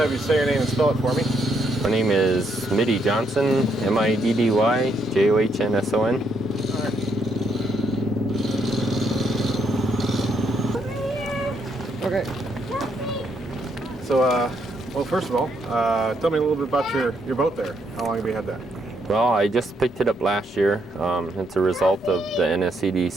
you say your name and spell it for me. My name is Middy Johnson, Middy Johnsson. Okay. So, well, first of all, tell me a little bit about your boat there. How long have you had that? Well, I just picked it up last year. It's a result of the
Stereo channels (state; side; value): normal; both; correlation 0.74